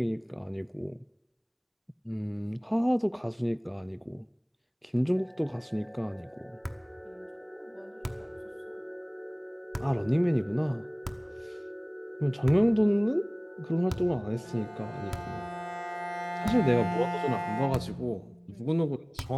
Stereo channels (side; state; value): both; identical; correlation 1.00